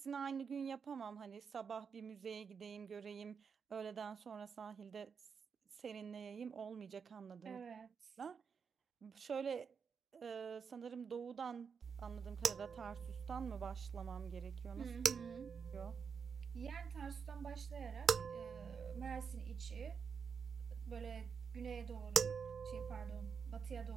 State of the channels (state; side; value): quieter; left; 6.2 dB